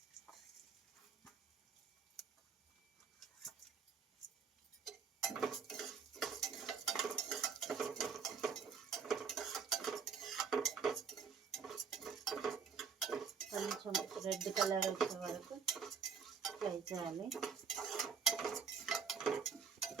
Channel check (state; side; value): quieter; left; 6.3 dB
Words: కొంచెం రెడ్ కలర్ వచ్చే వరకు ఫ్రై చేయాలి.